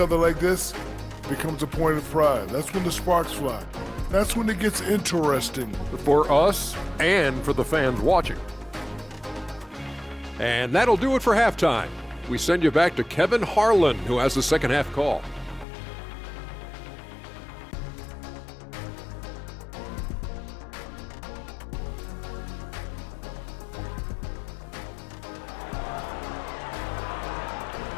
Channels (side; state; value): right; drops out; at 15.7 s